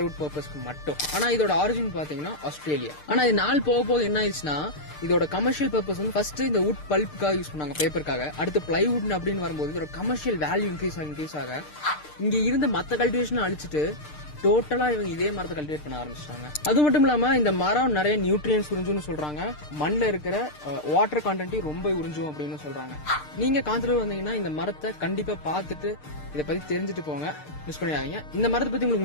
பர்பஸ்க்கு மட்டும். ஆனா இதோட ஆரிஜின் பாத்தீங்கன்னா ஆஸ்திரேலியா. ஆனா இது நாள் போக போக என்ன ஆயிடுச்சுன்னா, இதோட கமர்ஷியல் பர்பஸ் ஃபர்ஸ்ட் இந்த வுட் பல்ப்புக்காக யூஸ் பண்ணாங்க, பேப்பருக்காக. அடுத்து பிளைவுட் அப்படின்னு வரும்போது இதோட கமர்ஷியல் வேல்யூ இன்க்ரீஸ் ஆக இங்க இருந்த மத்த கல்டிவேஷன் அழிச்சிட்டு டோட்டலா இவங்க இதே மரத்தை கல்டிவேட் பண்ண ஆரம்பிச்சிட்டாங்க. அது மட்டும் இல்லாம இந்த மரம் நிறைய நியூட்ரியன்ஸ் உறிஞ்சும்னு சொல்றாங்க. மண்ணில் இருக்கிற வாட்டர் கண்டென்ட்டையும் ரொம்ப உறிஞ்சும் அப்படின்னு சொல்றாங்க. நீங்க காந்தலூர் வந்தீங்கன்னா இந்த மரத்தை கண்டிப்பா பார்த்துட்டு இதை பத்தி தெரிஞ்சுட்டு போங்க, மிஸ் பண்ணிடாதீங்க. இந்த மரத்தை பத்தி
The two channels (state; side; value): late; right; 6.6 ms